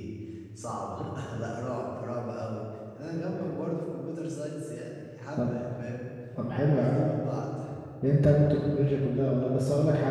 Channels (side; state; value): both; identical; correlation 1.00